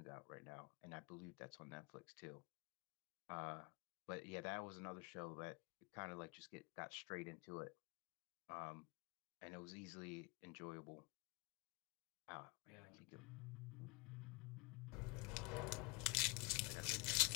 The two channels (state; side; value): quieter; right; 27.8 dB